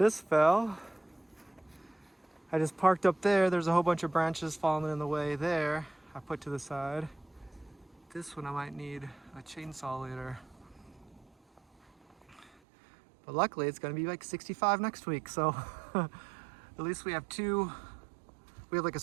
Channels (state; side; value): drops out; left; at 12.5 s